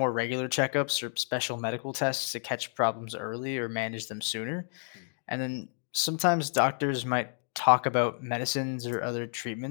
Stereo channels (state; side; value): silent; right; 58 dB below the other